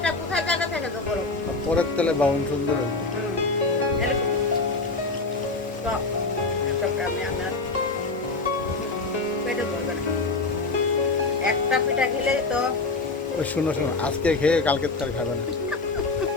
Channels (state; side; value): quieter; right; 3.6 dB